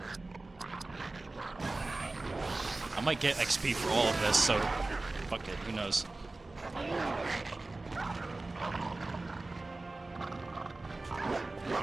I might get XP for all of this, so... fuck it, who knows.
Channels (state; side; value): quieter; left; 3.1 dB